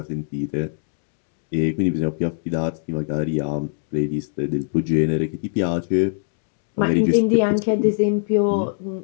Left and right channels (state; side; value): silent; right; digital silence